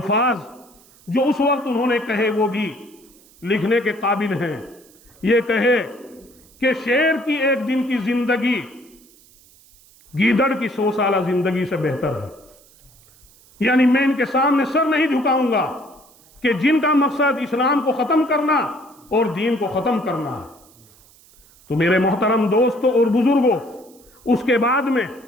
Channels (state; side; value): noise; right; hiss, 27 dB below the sound